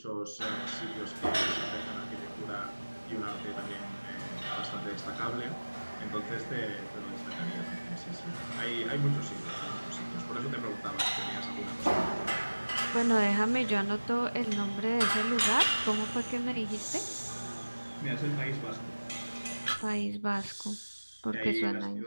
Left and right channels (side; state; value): both; inverted; correlation -1.00